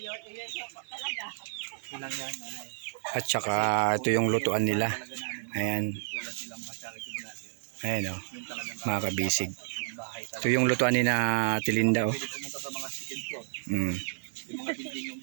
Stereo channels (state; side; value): silent; left; digital silence